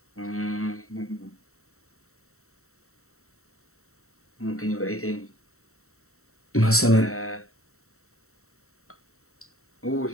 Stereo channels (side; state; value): right; late; 0.63 ms